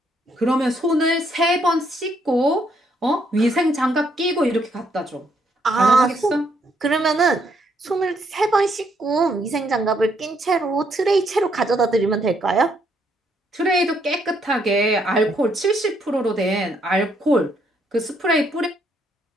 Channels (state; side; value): normal; both; correlation 0.72